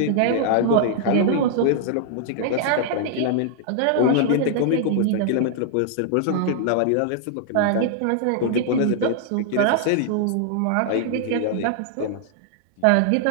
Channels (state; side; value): different; both; correlation -0.01